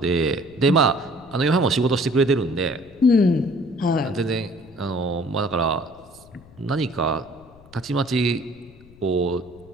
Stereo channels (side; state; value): left; noise; rumble, 24 dB below the sound